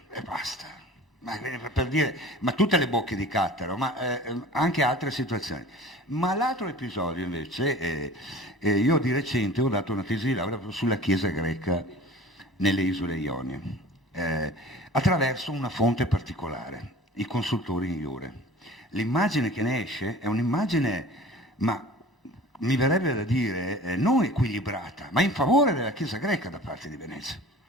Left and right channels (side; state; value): both; normal; correlation 0.43